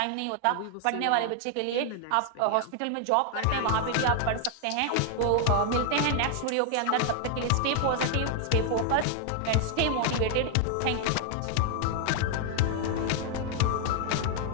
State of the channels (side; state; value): both; different; correlation 0.00